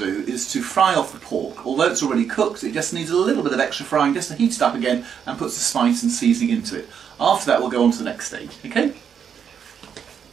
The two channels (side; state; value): left; quieter; 7.7 dB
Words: is to fry off the pork. Although it's already cooked, it just needs a little bit of extra frying just to heat it up again and put the spice and seasoning into it. After that we'll go on to the next stage, okay?